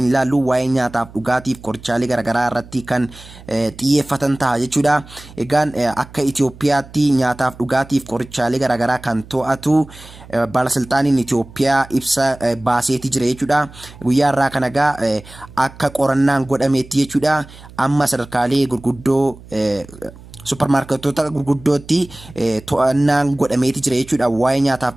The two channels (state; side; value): noise; right; hum, 20 dB below the sound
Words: ilaallu waa'ee nyaataaf dhugaatiif qorichaalee garaagaraa irratti kan xiyyeeffatan ta'a jechuudha. Egaan akka Itoophiyaatti nyaataaf dhugaatiif qorichaalee garaagaraa kan to'atu baalasilxaaniin Itoophiyaa ibsa baaseeti jira jechuudha. Guyyaa irraa kana egaa akka qorannaan godhameetti jechuudha. Amma sadarkaalee gurguddoo supermarketoota gurguddootti to'annaan godhameeti jira jechuudha waa'ee